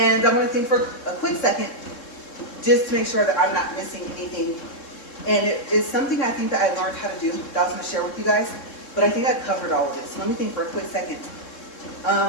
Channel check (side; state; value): right; late; 3.7 ms